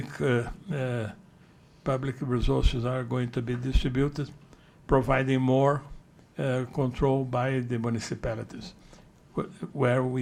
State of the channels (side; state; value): both; identical; correlation 1.00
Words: resources are going to be distributed, providing more control by the municipalities where